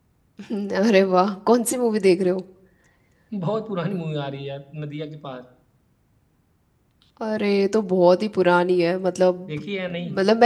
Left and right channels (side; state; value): both; identical; correlation 1.00